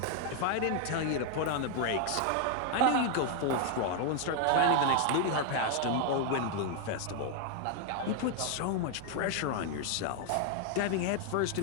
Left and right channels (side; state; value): both; different; correlation 0.00